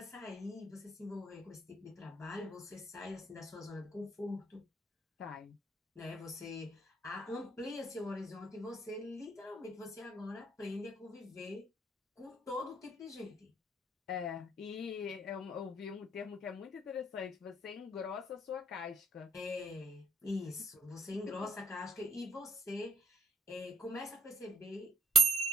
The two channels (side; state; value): both; normal; correlation 0.67